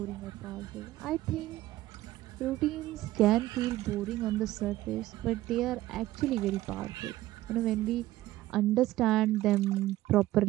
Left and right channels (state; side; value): quieter; left; 15.9 dB